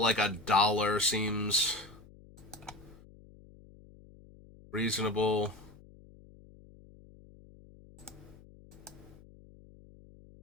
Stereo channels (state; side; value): noise; left; hum, 22 dB below the sound